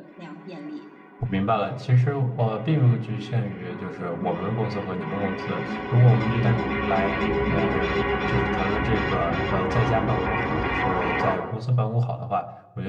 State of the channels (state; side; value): identical; both; correlation 1.00